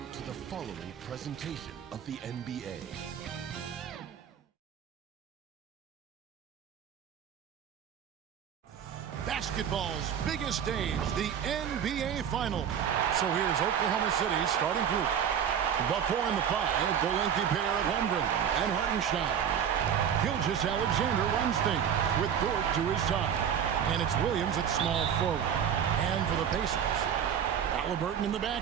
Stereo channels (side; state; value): left; quieter; 8.5 dB